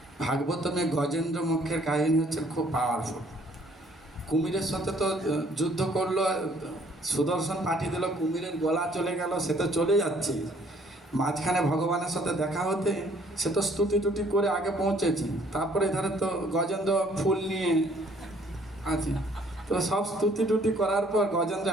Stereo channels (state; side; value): normal; both; correlation 0.61